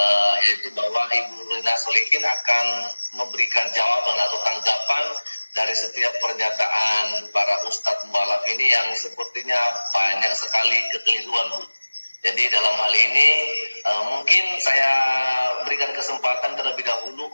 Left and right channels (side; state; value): both; inverted; correlation -1.00